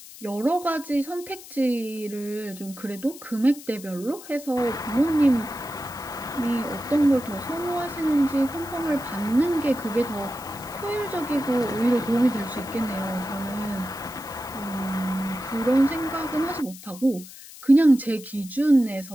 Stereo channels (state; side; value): noise; left; hiss, 17 dB below the sound